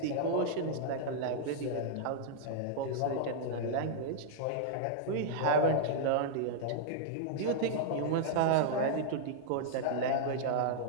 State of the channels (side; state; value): both; different; correlation -0.01